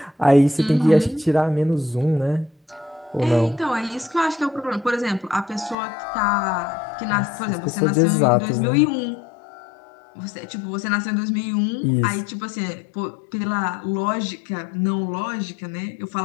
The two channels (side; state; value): right; drops out; at 5.8 s